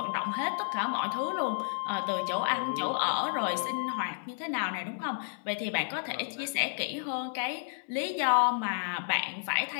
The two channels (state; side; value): silent; right; 57 dB below the other